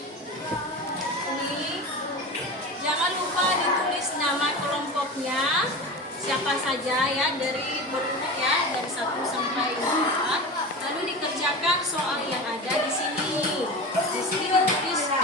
Jangan lupa ditulis nama kelompoknya. Siapa saja ya, dari berurut ya, dari 1 sampai 4. Lalu dikerjakan soal yang ada di sini. Di sini ditulis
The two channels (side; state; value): both; normal; correlation 0.28